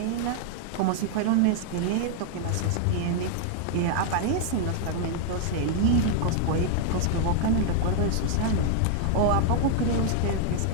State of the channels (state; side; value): different; both; correlation 0.00